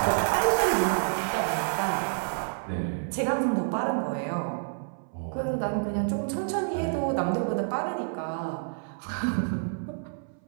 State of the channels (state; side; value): silent; left; 59 dB below the other